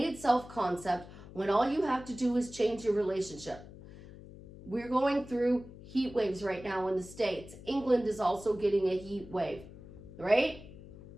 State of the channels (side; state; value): left; noise; hum, 17 dB below the sound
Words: self-concept, when all you have to do is change your relationship. We're going through heat waves right now in the States. England is also getting a heat wave, right?